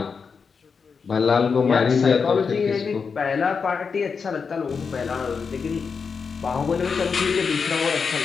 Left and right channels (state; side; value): quieter; right; 5.6 dB